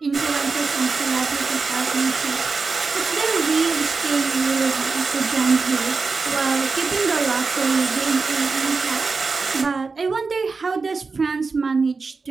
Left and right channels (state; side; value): quieter; left; 4.4 dB